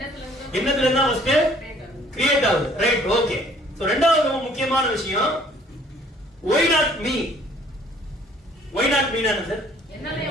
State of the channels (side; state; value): both; normal; correlation 0.58